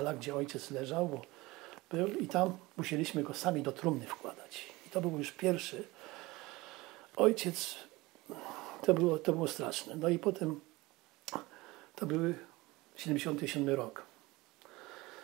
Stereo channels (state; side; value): quieter; left; 21.2 dB